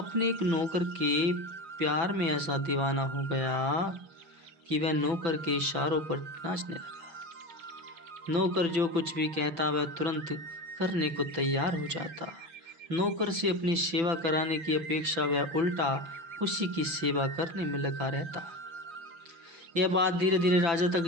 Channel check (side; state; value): left; late; 6.0 ms